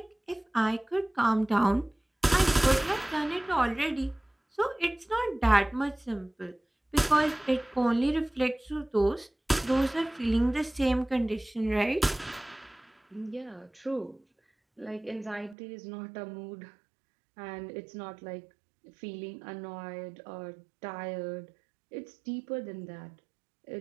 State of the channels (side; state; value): left; drops out; at 15.6 s